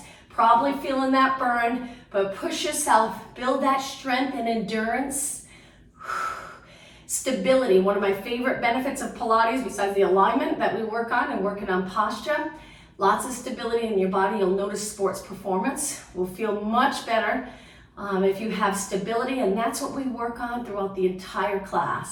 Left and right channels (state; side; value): identical; both; correlation 1.00